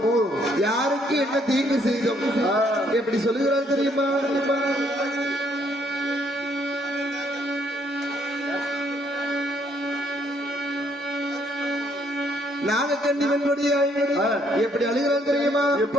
யாருக்கு என்ன தீங்கு செய்தோம் எப்படி சொல்லுகிறார் தெரியுமா? நாகக்கண்ணிவனுடைய எப்படி அழுகிறான் தெரியுமா?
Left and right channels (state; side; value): normal; both; correlation 0.68